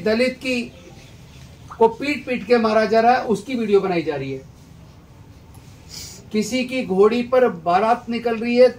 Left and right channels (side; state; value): both; identical; correlation 1.00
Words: की को पीट पीट के मारा जा रहा है, उसकी वीडियो बनाई जा रही है। किसी की घोड़ी पर बारात निकल रही है